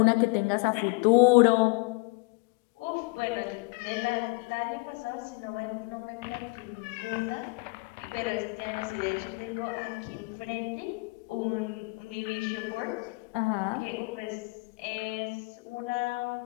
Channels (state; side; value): quieter; right; 27.0 dB